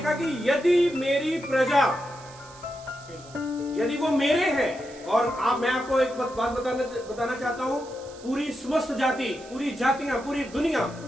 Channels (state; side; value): noise; right; hiss, 21 dB below the sound